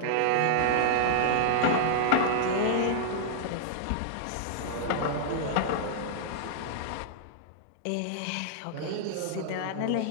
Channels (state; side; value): different; both; correlation -0.01